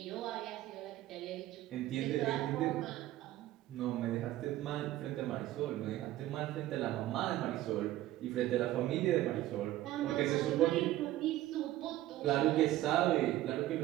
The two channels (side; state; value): left; quieter; 15.0 dB